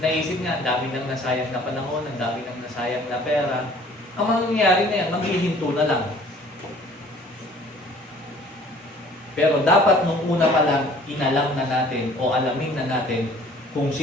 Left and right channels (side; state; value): both; normal; correlation 0.52